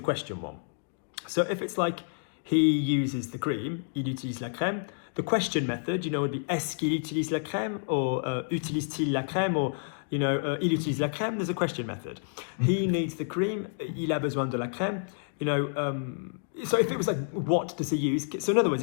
question one. So if it's like, he uses the cream, il utilise la crème, the question method, would be est-ce qu'il utilise la crème, or utilise-t-il la crème, or, il utilise la crème, there's a question method. He needs the cream, il a besoin de la crème, You know, so if it was like, what does he use? So in other words,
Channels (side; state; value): right; silent; digital silence